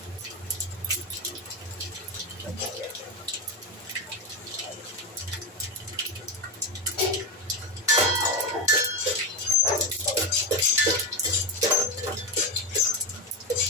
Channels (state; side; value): normal; both; correlation 0.13